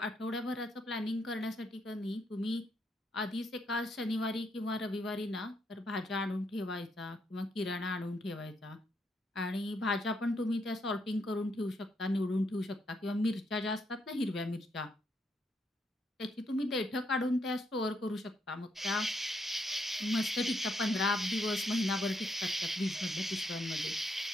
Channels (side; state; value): both; normal; correlation 0.77